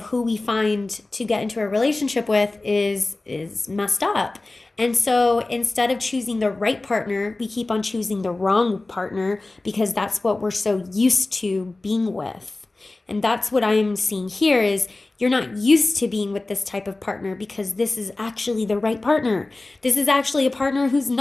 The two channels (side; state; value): right; quieter; 3.0 dB